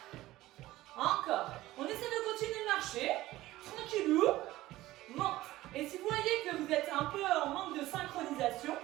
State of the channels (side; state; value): left; quieter; 16.7 dB